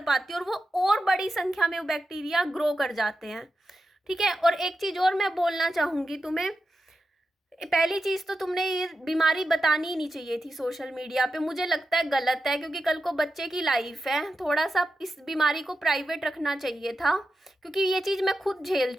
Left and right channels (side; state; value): both; normal; correlation 0.90